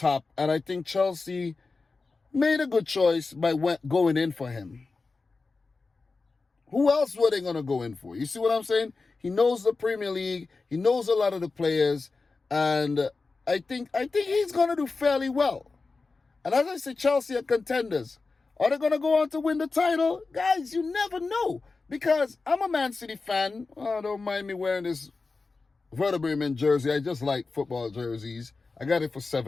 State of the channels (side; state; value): right; quieter; 4.0 dB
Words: And I think Chelsea made a good choice by going in for him. Who else were they going to go in for? You see what I'm saying? He knows the Premier League. He knows a lot of the players. And I think he's going to do fairly well. And as I say, Chelsea are contenders. Are they going to go on to win the title? Guys, you never know. Because I'm a Man City fan. Oh, don't mind me wearing this Werder Bremen jersey. I just like football jerseys. I got it for